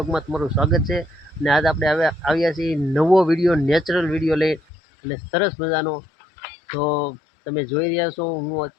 તમારું સ્વાગત છે। અને આજ આપણે આવ્યા છીએ નવો વિડીયો, નેચરલ વિડીયો લઈ અને સરસ મજાનો। તો તમે જોઈ રહ્યા છો, હું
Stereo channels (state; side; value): drops out; right; at 4.6 s